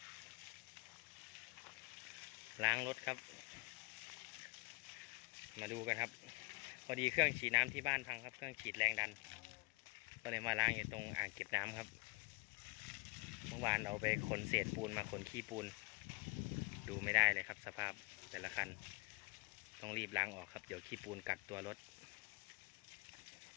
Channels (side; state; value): right; quieter; 26.9 dB